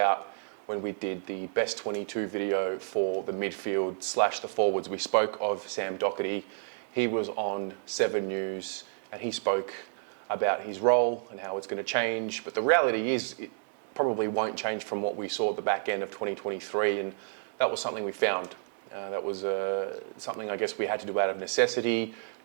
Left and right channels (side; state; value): left; silent; digital silence